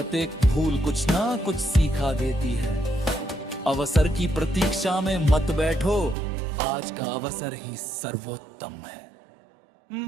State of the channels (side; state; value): left; drops out; at 6.2 s